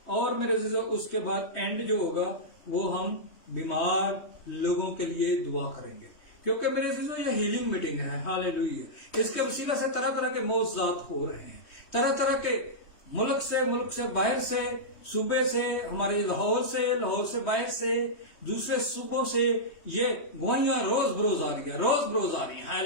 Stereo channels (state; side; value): late; right; 3.2 ms